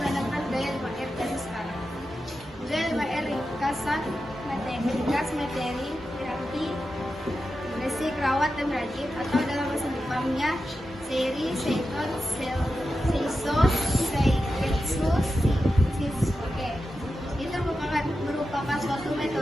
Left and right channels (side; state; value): both; normal; correlation 0.91